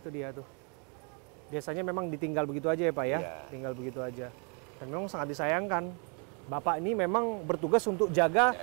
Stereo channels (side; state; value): left; quieter; 37.3 dB